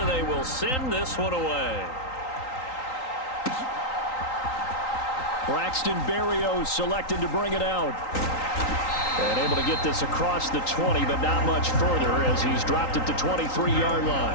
they will send this one away. Braxton Berrios selected to bring it out. And able to get this across the 20, but not much further as he's dropped it to 23-yard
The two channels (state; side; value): late; right; 3.8 ms